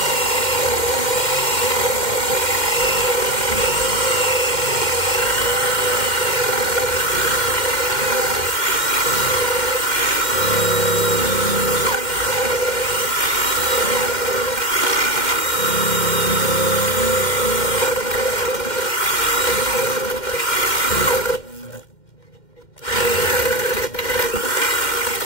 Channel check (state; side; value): late; right; 2.1 ms